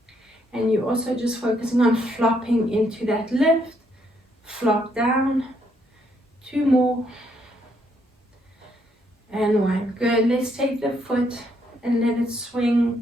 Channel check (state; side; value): normal; both; correlation 0.73